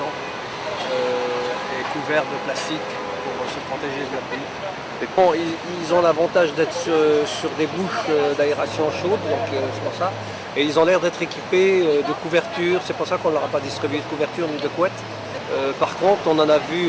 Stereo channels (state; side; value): identical; both; correlation 1.00